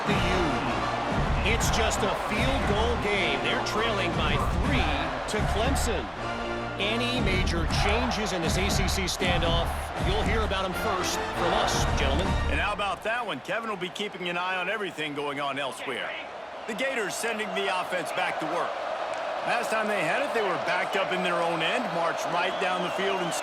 the U. It's just a field goal game. They're trailing by 3 to Clemson. Any major changes in this ACC standoff, you'll hear about them first from us, gentlemen. And how about that one? Kevin will be keeping an eye on everything going on elsewhere. The Gators sending the offense back to work. Last time they had it, they were backed up in their own end, marched right down the field and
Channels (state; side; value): identical; both; correlation 1.00